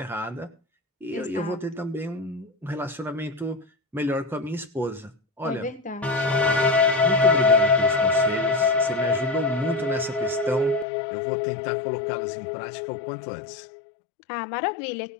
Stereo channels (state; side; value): drops out; right; at 10.9 s